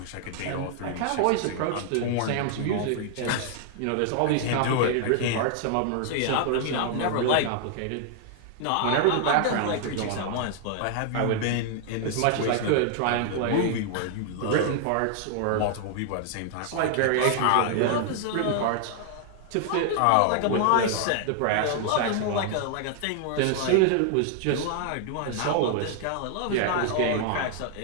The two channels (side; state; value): both; different; correlation 0.00